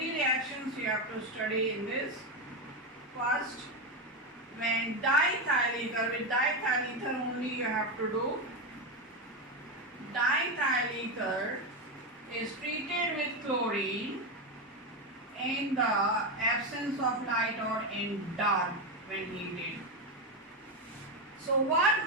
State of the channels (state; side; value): normal; both; correlation 0.11